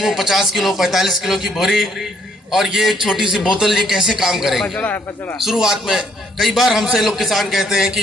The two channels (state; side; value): normal; both; correlation 0.67